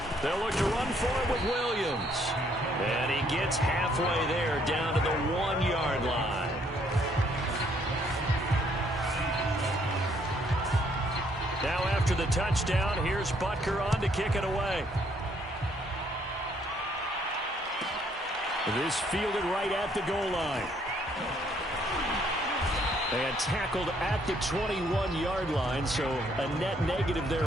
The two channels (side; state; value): both; normal; correlation 0.67